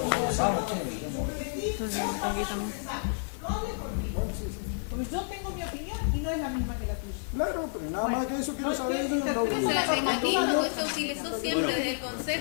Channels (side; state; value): right; silent; digital silence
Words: Vamos, che. Vos pasás tu mensaje, no hables por mí. Porque yo tengo mi opinión y no es la misma que la tuya. Claro, pero nada más que eso quiero saber. El mecanismo que se utilizó siempre desde el